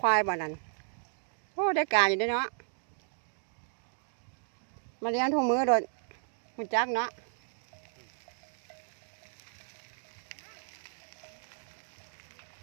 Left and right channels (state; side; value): silent; left; digital silence